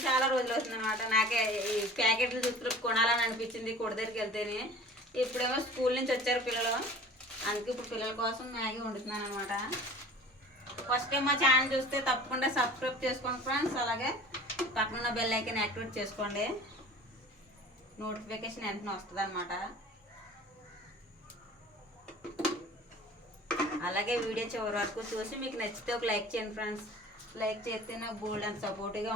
చాలా రోజులు అవుతుంది అనమాట. నాకే ఈ ప్యాకెట్లు చూస్తూ కొనాలని అనిపించింది కొడ దగ్గరికి వెళ్తేనే. ఇప్పుడేమో స్కూల్ నుంచి వచ్చారు పిల్లలు, అందుకే ఇప్పుడు పిల్లల కోసం మ్యాగీ వండుతున్నాను అనమాట. ఫస్ట్ టైం మా ఛానల్ చూస్తే తప్పకుండా సబ్స్క్రైబ్ చేసుకోండి ఫ్రెండ్స్. అలాగే పక్కన బెల్ ఐకాన్ యాక్టివేట్ చేసుకోండి, నోటిఫికేషన్ వెంటనే వస్తుంది అనమాట. అలాగే వీడియో చివరి వరకు చూసి మీకు నచ్చితే ఒక లైక్ చేయండి ఫ్రెండ్స్. లైక్ చేస్తే నాకు బోల్డ్ అంత సపోర్టివ్గా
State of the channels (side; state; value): both; normal; correlation 0.43